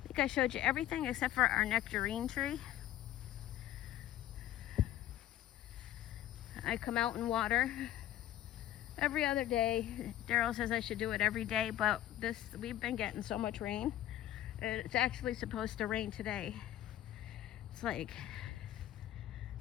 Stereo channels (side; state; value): right; quieter; 13.1 dB